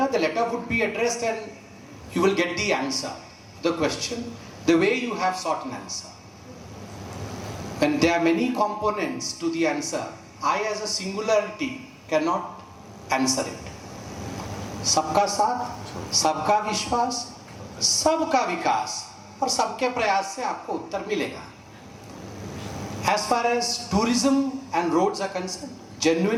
The letter would be addressed and you will get the answer, the question, the way you have sought an answer. When there are many components to the answer, I as a singularity cannot answer it. सबका साथ, सबका विश्वास, सबका विकास और सबके प्रयास से आपको उत्तर मिलेगा. As far as tourism and roads are concerned,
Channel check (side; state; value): both; identical; correlation 1.00